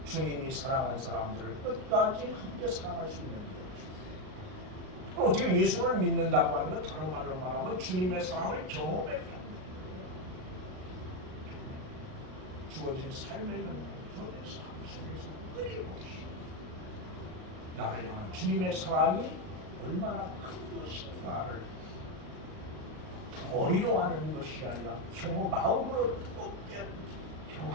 주님이 사랑한 사람들을 끝까지 함께 사랑할 수 있는 거예요. 그럼 어떻게 예수를 믿는다고 하는 건 다른 말로 말하면 주님의 사랑을 경험해 가는 거예요. 주어진 삶의 연장, 주어진 삶 속에서 끊임없이 나를 향한 주님의 사랑이 얼마나 큰 것인가를 머리로 하는 것이 아니라 마음으로 뜨겁게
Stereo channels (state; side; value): late; left; 39 ms